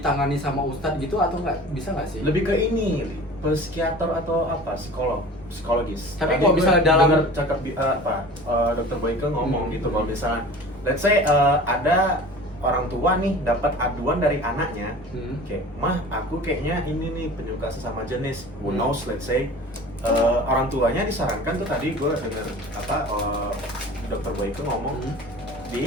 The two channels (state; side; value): normal; both; correlation 0.40